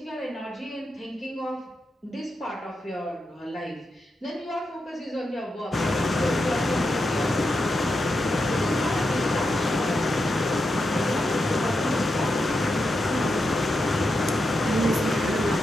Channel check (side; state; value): both; normal; correlation 0.86